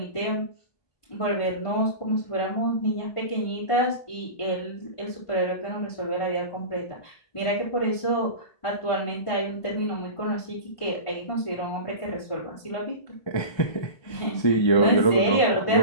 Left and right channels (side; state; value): right; late; 1.5 ms